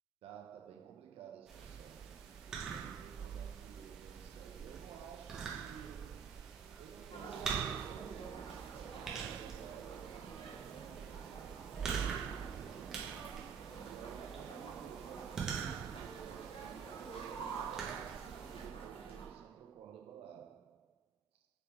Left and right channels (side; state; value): left; quieter; 6.8 dB